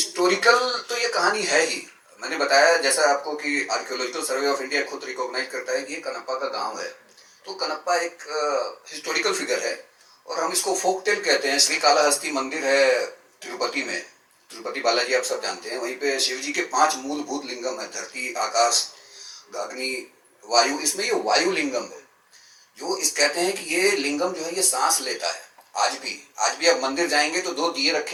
तो ये कहानी है ही। मैंने बताया जैसा आपको कि आर्कियोलॉजिकल सर्वे ऑफ इंडिया खुद रिकॉग्नाइज करता है कि ये कनप्पा का गांव है, तो कनप्पा एक हिस्टोरिकल फिगर है और हम इसको फोक टेल कहते हैं। श्री कालाहस्ती मंदिर है तिरुपति में, तिरुपति बालाजी आप सब जानते हैं। वहीं पे शिव जी के 5 मूलभूत लिंगम है, धरती, आकाश, अग्नि, वायु। इसमें ये वायु लिंगम है जो इस कहते हैं कि ये लिंगम जो है ये सांस लेता है। आज भी आप मंदिर जाएंगे तो 2 दिए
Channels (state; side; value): identical; both; correlation 1.00